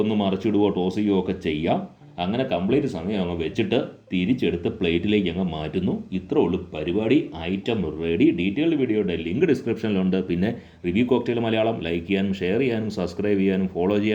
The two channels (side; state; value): both; identical; correlation 1.00